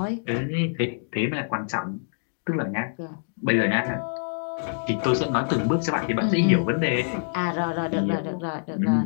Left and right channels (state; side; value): silent; right; digital silence